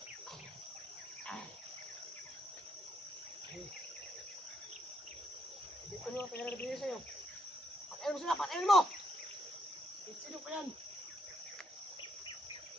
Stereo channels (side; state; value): both; normal; correlation 0.73